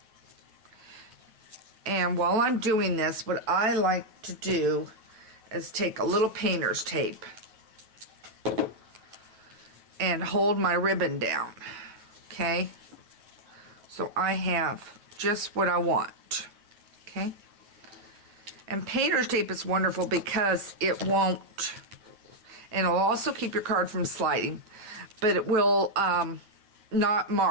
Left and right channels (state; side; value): late; left; 9.3 ms